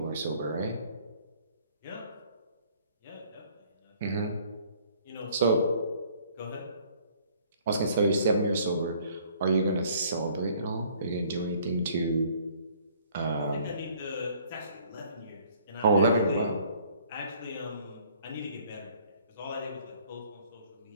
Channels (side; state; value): both; inverted; correlation -0.58